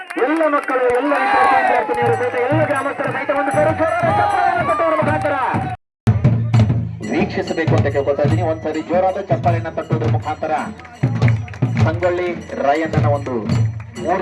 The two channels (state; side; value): identical; both; correlation 1.00